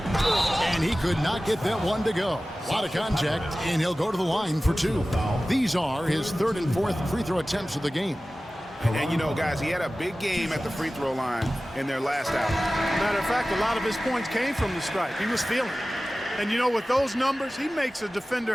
And he could not get that one to go. A lot of contact, and he'll go to the line for 2. These are his 3rd and 4th free throw attempts of the game. And you know, guys, he had a big game at the free throw line in their last out. Matter of fact, a lot of his points came from the stripe. He was feeling it. And you know, with those numbers, he makes a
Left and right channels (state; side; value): normal; both; correlation 0.96